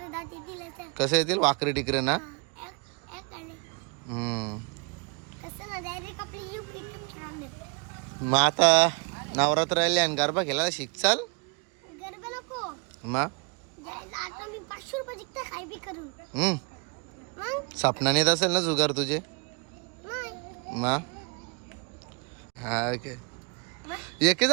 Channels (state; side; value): quieter; left; 32.5 dB